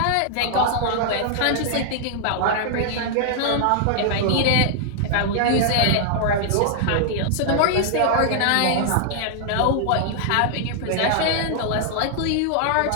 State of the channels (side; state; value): both; different; correlation -0.01